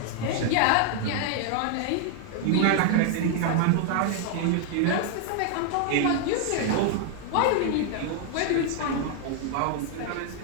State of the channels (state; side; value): different; both; correlation 0.00